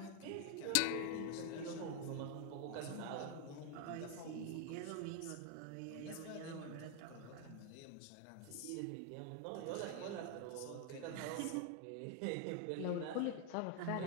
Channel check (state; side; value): different; both; correlation 0.00